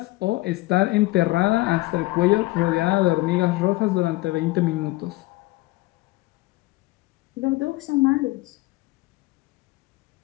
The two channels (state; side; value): quieter; right; 20.2 dB